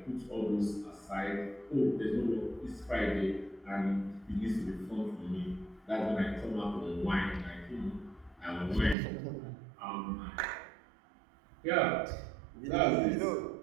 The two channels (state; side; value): drops out; left; at 9.0 s